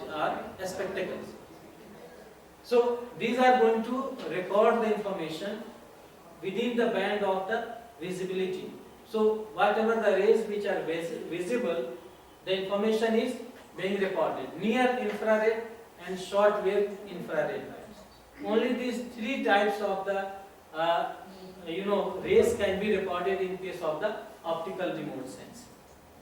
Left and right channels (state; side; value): identical; both; correlation 1.00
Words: our spectacles. So these are going to record the information within the band of the visibility. So whatever the rays which are visible, the information is being recorded. Near infrared and short wave infrared bands. Only these three types of the rays can be recorded in case of the optical remote sensing.